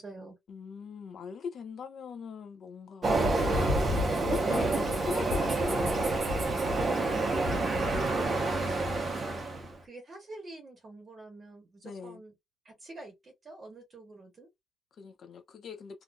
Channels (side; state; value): both; normal; correlation 0.80